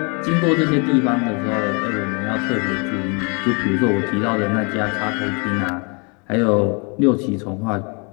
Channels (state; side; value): quieter; right; 33.8 dB